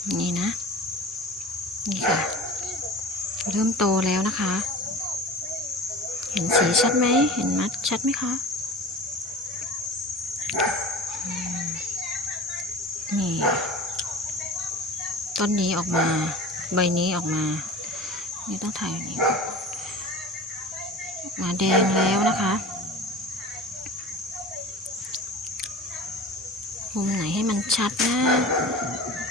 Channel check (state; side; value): normal; both; correlation 0.37